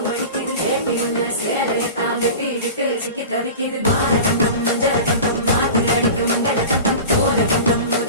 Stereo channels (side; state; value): both; inverted; correlation -0.34